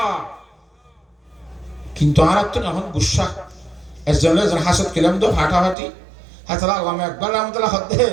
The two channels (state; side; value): drops out; left; at 5.8 s